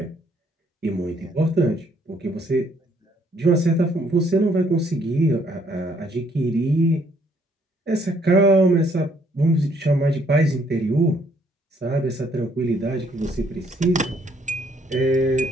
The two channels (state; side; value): normal; both; correlation 0.66